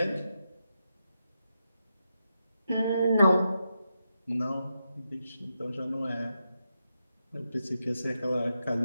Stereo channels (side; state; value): both; inverted; correlation -0.86